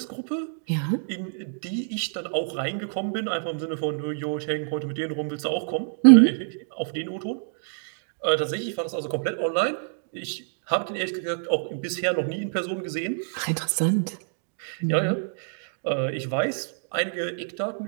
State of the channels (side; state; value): left; silent; digital silence